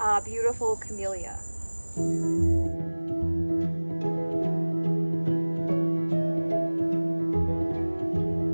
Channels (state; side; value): inverted; both; correlation -1.00